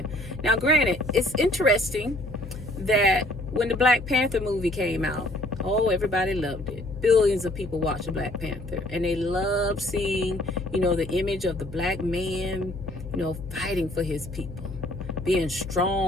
Now, granted, it's interesting that when the Black Panther movie came out, oh, everybody loved it. Billions of people watched Black Panther, and they loved seeing, you know, the image of the black man, you know, fighting for his people, being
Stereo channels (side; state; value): left; noise; hum, 11 dB below the sound